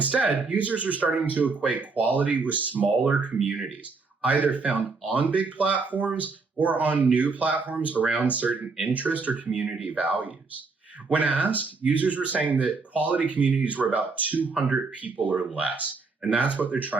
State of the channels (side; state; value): left; quieter; 4.3 dB